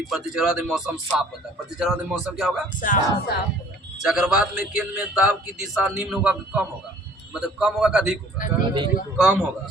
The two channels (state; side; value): normal; both; correlation 0.54